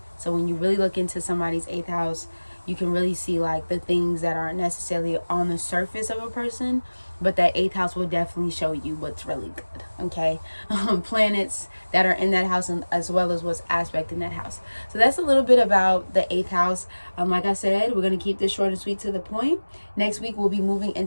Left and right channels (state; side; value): inverted; both; correlation -1.00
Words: So when you really look into somebody's 8th house, you can really see like the things that aren't necessarily on the surface of a person, but that 8th house will definitely show you what's really good. Okay. Planets that are in that house, and as well as what's aspect in that house. So that's a little bit about the 8th house. Like I said, we're going to keep this short and sweet to the point. Next week, we'll be moving